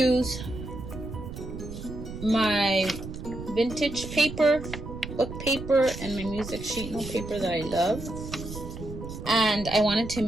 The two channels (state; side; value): noise; right; rumble, 10 dB below the sound